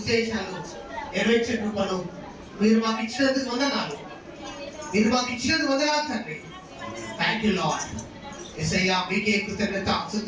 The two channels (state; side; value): identical; both; correlation 1.00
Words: నెరవేర్చే కృపను మీరు మాకు ఇచ్చినందుకు వందనాలు. మీరు మాకు ఇచ్చినందుకు వందనాలు తండ్రి. Thank you lord. యేసయ్యా మీకే కృతజ్ఞత